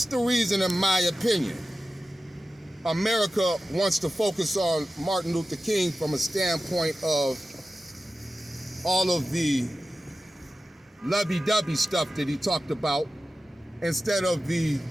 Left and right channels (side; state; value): both; normal; correlation 0.94